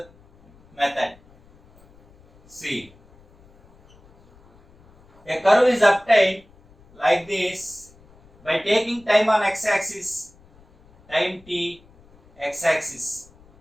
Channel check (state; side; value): noise; left; rumble, 28 dB below the sound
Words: method. See, a curve is obtained like this by taking time on x-axis, time t, x-axis.